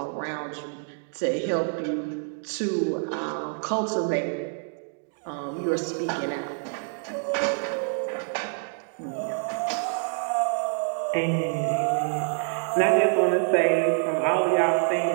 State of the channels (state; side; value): silent; left; 60 dB below the other